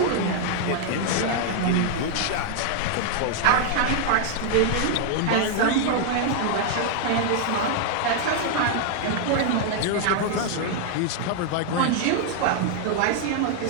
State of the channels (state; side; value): different; both; correlation 0.00